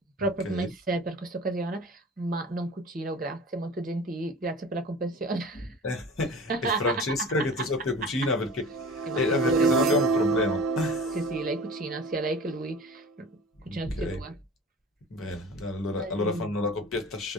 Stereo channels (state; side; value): normal; both; correlation 0.40